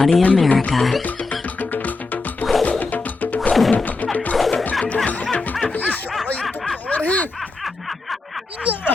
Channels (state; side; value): quieter; right; 3.7 dB